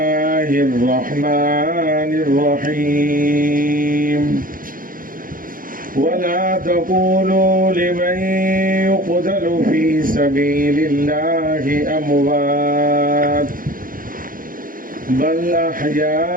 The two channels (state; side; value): late; left; 0.40 ms